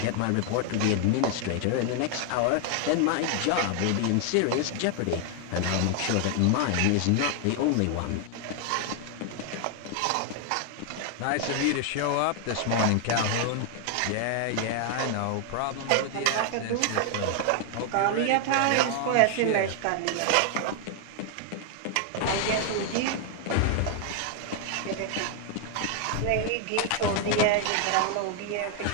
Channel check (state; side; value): different; both; correlation 0.00